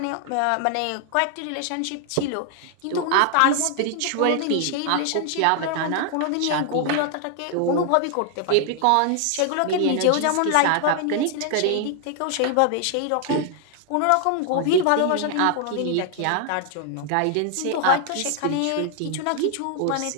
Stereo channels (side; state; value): both; different; correlation 0.00